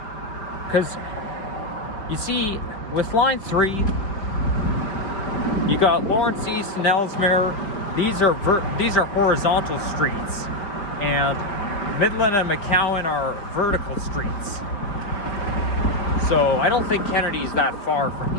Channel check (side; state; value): right; late; 4.7 ms